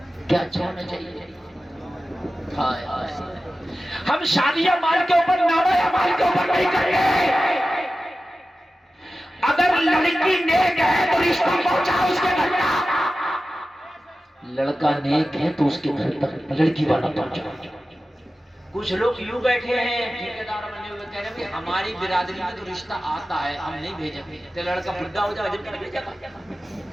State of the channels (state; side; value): normal; both; correlation 0.94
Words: کیا اچھا ہونا چاہیے؟ ہم شادیاں مال کے اوپر، نام اعمال کے اوپر نہیں کریں گے۔ اگر لڑکی نیک ہے تو رشتہ پہنچا اس کے گھر تک، لڑکا نیک ہے تو اس کے گھر تک لڑکی والا پہنچا۔ کچھ لوگ یوں بیٹھے ہیں ٹھیکیدار بنے ہوئے کہہ رہے ہیں ہماری برادری میں تو رشتہ آتا ہے ہم نہیں بھیجیں گے، تو لڑکا بڈھا ہو جائے جب بھیجے گا۔